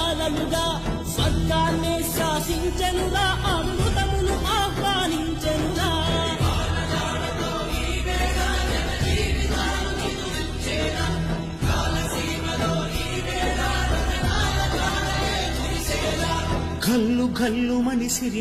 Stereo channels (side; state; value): both; identical; correlation 1.00